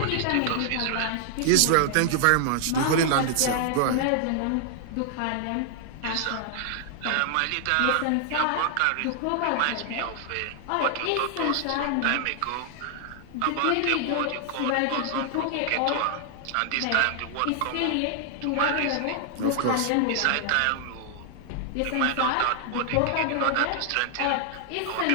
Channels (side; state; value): both; different; correlation 0.00